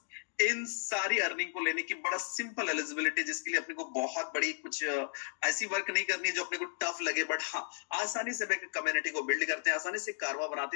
इन सारी अर्निंग को लेने की बड़ा सिंपल एलिजिबिलिटी, जिसके लिए अपने को बहुत बड़ी कुछ ऐसी वर्क नहीं करनी है जो अपने को टफ लगे, बट हाँ आसानी से कम्युनिटी को बिल्ड करते हैं, आसानी से कारवा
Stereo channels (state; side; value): silent; right; digital silence